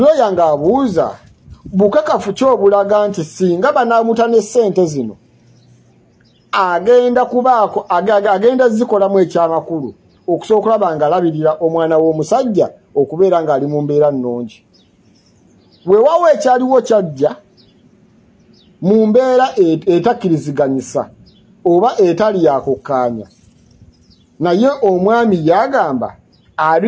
ng'abuuza bukakafu kyobulaga nti singa banaamutane ssente zino agenda zikolamu ekyamakulu okusobola okulaba nga alabirira omwana w'omusajja okubeera ng'ali mu mbeera nnungi. Weewaawo ekyaliwo kyajja mu mbeera etakkiriziganyisa oba etali yakukkaanya naye omwami yagamba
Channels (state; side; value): identical; both; correlation 1.00